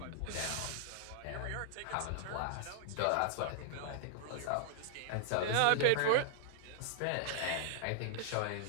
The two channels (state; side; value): different; both; correlation 0.00